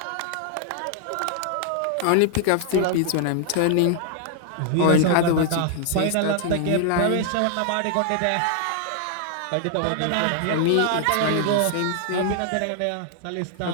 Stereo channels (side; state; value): both; different; correlation 0.00